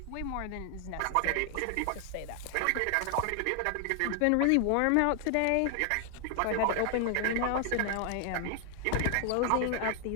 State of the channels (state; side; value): different; both; correlation 0.00